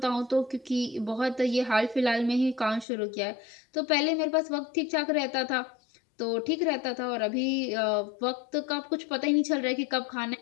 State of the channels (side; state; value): right; drops out; at 2.9 s